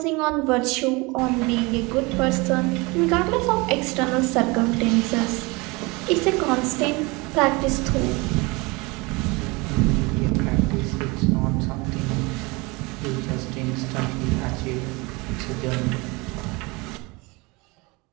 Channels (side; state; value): left; quieter; 25.7 dB